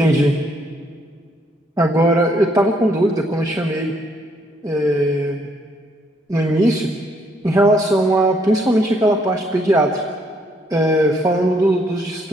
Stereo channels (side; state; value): both; normal; correlation 0.70